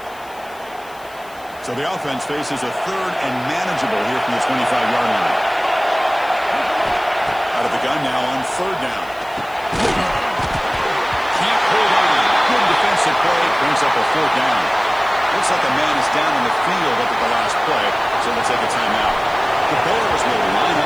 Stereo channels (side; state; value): left; noise; hiss, 24 dB below the sound